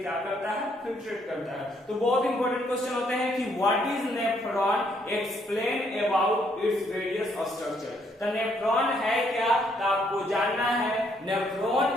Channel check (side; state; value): both; normal; correlation 0.70